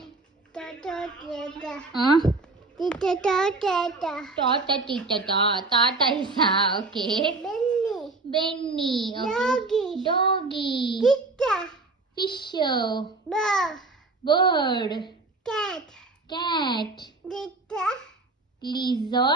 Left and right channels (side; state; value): left; quieter; 3.5 dB